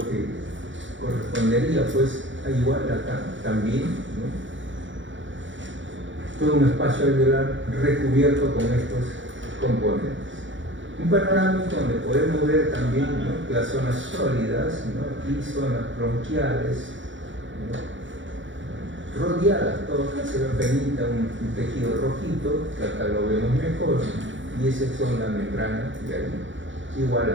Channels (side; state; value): left; late; 0.55 ms